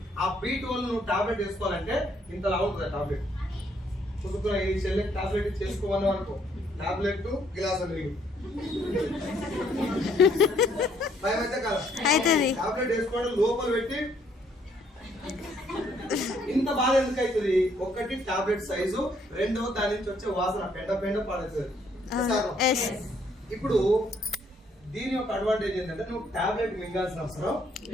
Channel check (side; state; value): both; normal; correlation 0.67